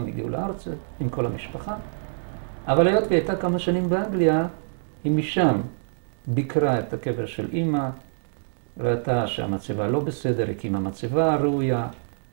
הגיעו לארץ עם כל המשפחה. אבל היות והיא הייתה כמה שנים באנגליה, היא משם ביקרה את הקבר של אמא, ראתה שהמצבה לא בסדר, הקימה מצבה ראויה,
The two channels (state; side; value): silent; left; digital silence